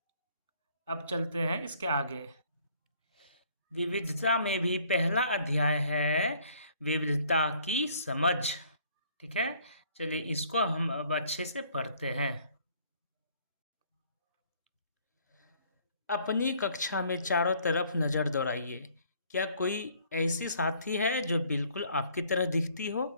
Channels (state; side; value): inverted; both; correlation -0.60